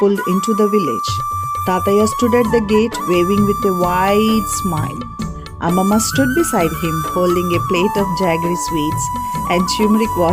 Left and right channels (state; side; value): identical; both; correlation 1.00